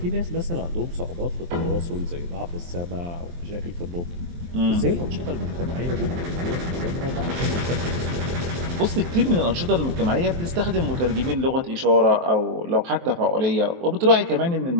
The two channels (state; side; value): late; left; 23 ms